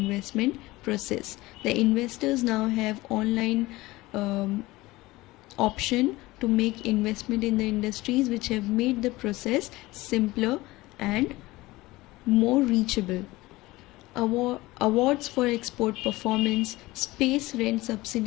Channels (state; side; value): quieter; right; 19.6 dB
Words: process. The investors now have online option to make investment in the industries, which have made the process simpler and more reachable. Awards for export performance. Space rent